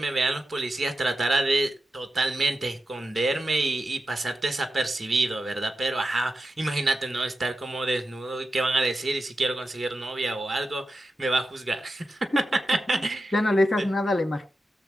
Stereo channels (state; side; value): normal; both; correlation 0.91